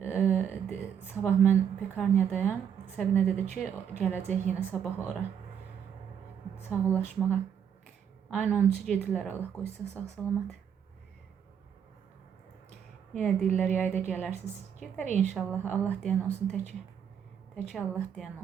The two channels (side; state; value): left; quieter; 8.2 dB